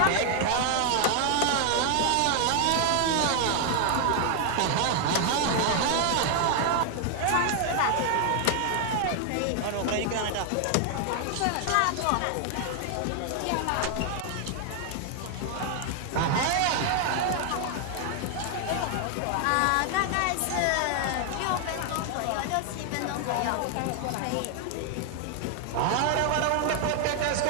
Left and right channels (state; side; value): different; both; correlation 0.00